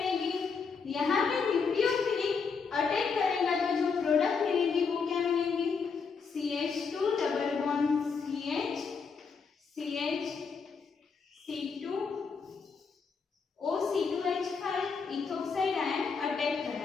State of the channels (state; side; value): quieter; right; 5.4 dB